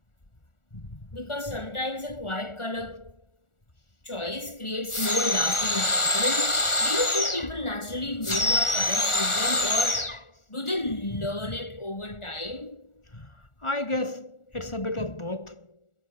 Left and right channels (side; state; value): right; late; 1.4 ms